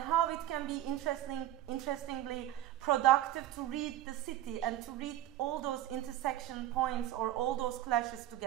how it can be interestingly productive to read the city and to read all those intersection points or all those clashes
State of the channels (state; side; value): quieter; left; 13.3 dB